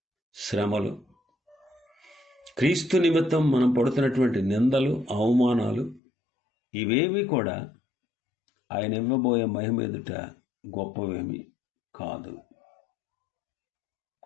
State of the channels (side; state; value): right; drops out; at 6.0 s